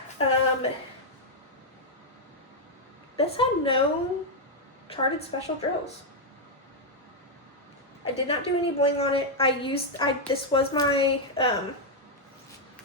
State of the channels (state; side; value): normal; both; correlation -0.01